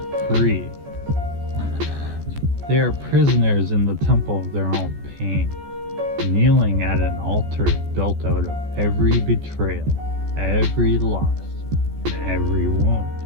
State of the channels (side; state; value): left; late; 14 ms